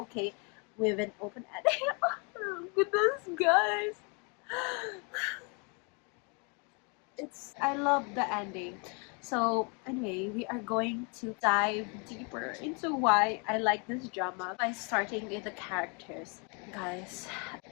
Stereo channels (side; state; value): right; quieter; 34.5 dB